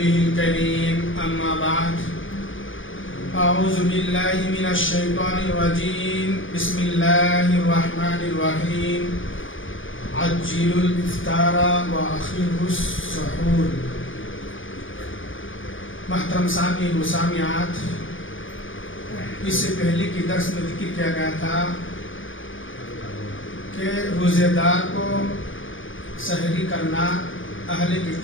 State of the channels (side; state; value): right; late; 0.57 ms